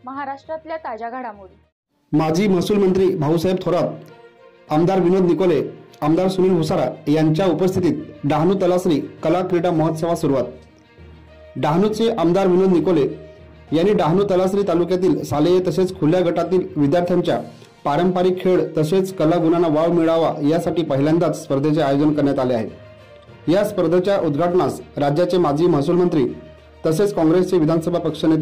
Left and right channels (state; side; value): identical; both; correlation 1.00